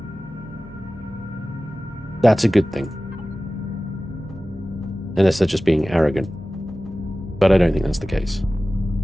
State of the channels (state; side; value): normal; both; correlation 0.96